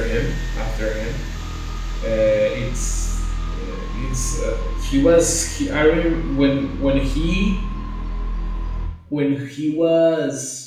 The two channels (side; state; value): both; identical; correlation 1.00